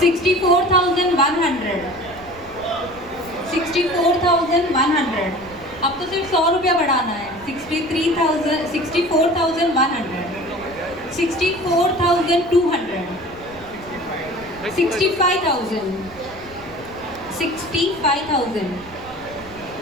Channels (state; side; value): noise; right; rumble, 21 dB below the sound